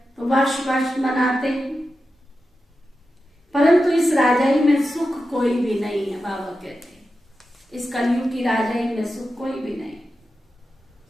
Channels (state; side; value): normal; both; correlation 0.91